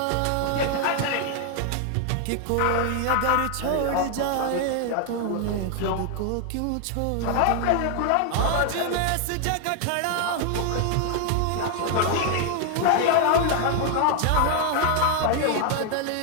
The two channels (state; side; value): different; both; correlation 0.00